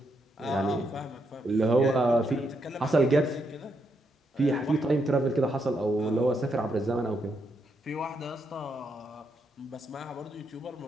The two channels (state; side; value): normal; both; correlation 0.79